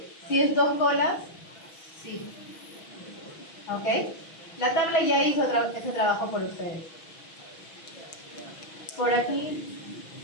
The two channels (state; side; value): late; right; 6.1 ms